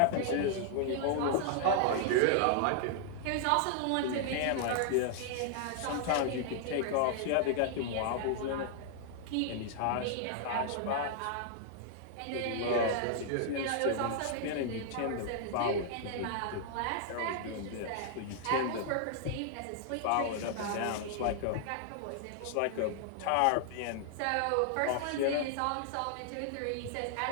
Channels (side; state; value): both; different; correlation -0.01